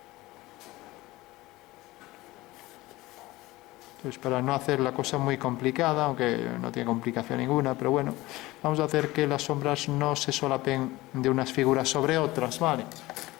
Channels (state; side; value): quieter; right; 19.1 dB